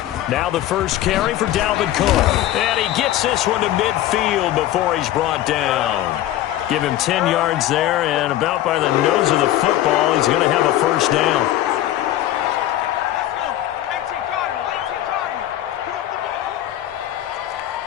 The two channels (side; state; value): right; quieter; 13.6 dB